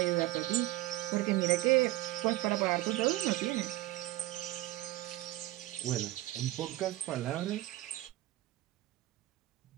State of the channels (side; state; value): left; quieter; 17.2 dB